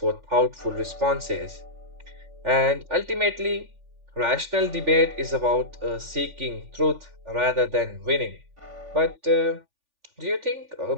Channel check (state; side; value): late; left; 3.4 ms